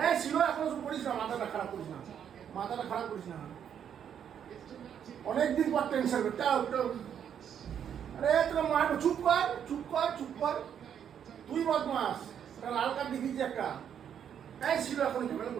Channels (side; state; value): left; quieter; 8.7 dB